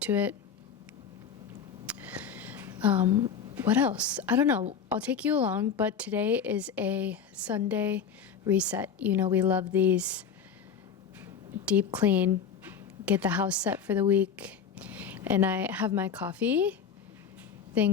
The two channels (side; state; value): right; quieter; 6.9 dB